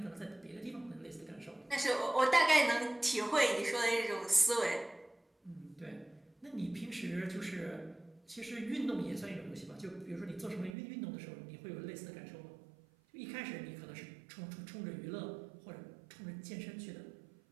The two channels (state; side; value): drops out; left; at 10.7 s